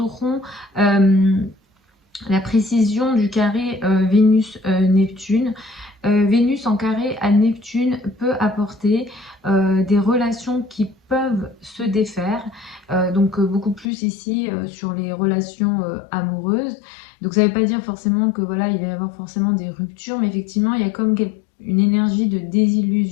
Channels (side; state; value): right; drops out; at 13.9 s